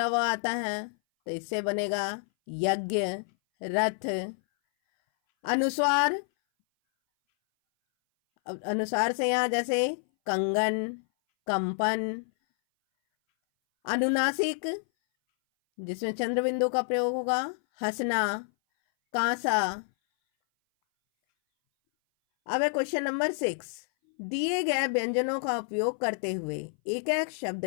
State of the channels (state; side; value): silent; right; 58 dB below the other